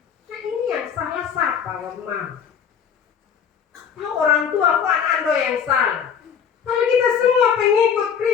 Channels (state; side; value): quieter; right; 7.5 dB